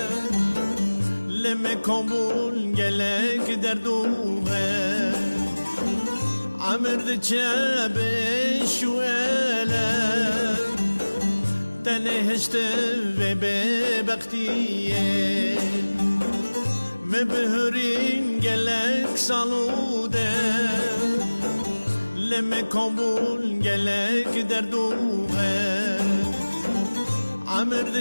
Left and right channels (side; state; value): both; inverted; correlation -1.00